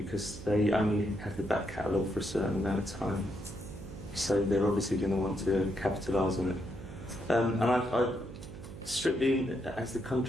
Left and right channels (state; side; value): noise; right; hum, 13 dB below the sound